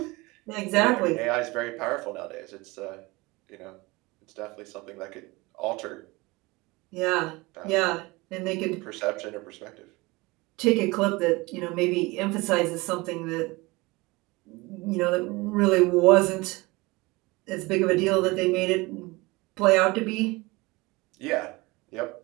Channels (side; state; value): left; quieter; 23.2 dB